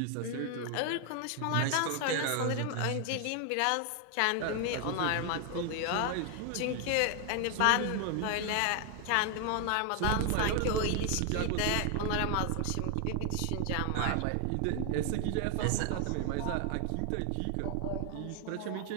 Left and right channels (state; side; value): different; both; correlation 0.00